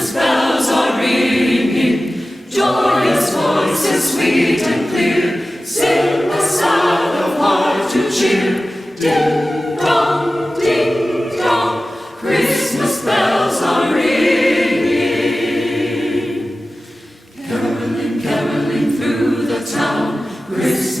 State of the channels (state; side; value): normal; both; correlation 0.95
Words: bells are ringing, joyous voices sweet and clear, sing the sound of heart to cheer. Ding dong, Christmas bells are ringing. Caroling, caroling through the town,